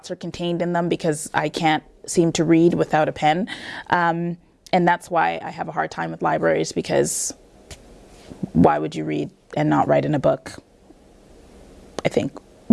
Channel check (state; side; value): identical; both; correlation 1.00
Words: are contained in them, because I can't seem to read without a pen. And that's why I have a hard time with libraries, because why would you read and not write in a book? I think.